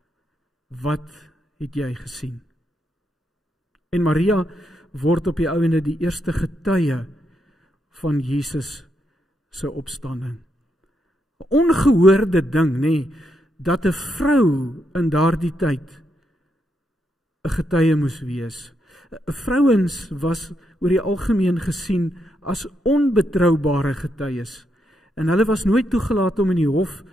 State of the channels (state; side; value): normal; both; correlation 0.80